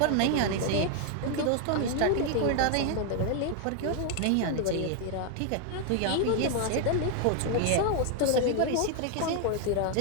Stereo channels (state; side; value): different; both; correlation 0.00